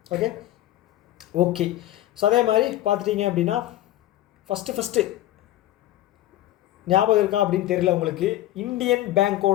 Okay okay. ஸோ அதே மாதிரி பார்த்துட்டிங்க அப்படின்னா ஃபஸ்ட்டு ஞாபகம் இருக்கா அப்படின்னு தெரியல உங்களுக்கு, இந்தியன்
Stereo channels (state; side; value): quieter; right; 14.4 dB